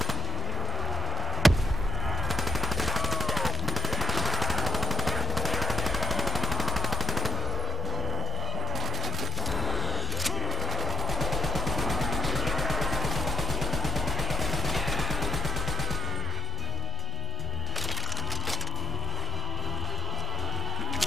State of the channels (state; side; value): normal; both; correlation 0.95